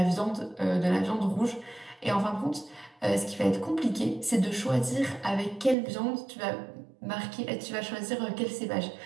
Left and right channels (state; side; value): drops out; left; at 5.8 s